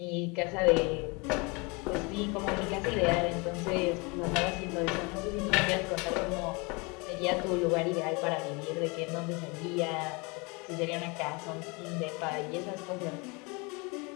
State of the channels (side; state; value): right; quieter; 28.7 dB